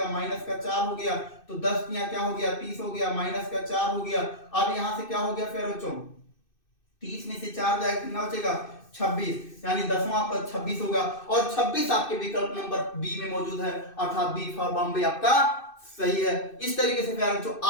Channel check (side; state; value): right; late; 2.6 ms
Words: माइनस का 4 हो गया। तो 10 यहाँ क्या हो गया, 30 हो गया, माइनस का 4 हो गया। अब यहां से क्या हो गया प्यारे बच्चों, 30 में से 4 जाएगा, कितना बचेगा, 26, यानी 10वां पद 26 होगा। और 26 आपके विकल्प नंबर बी में मौजूद है, अर्थात बी फॉर बॉम्बे आपका सही है। इस तरीके से प्यारे बच्चों